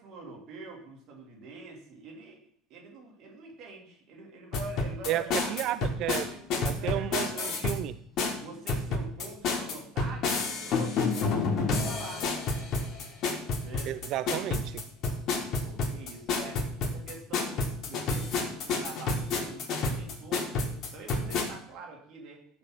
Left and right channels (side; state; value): both; normal; correlation 0.43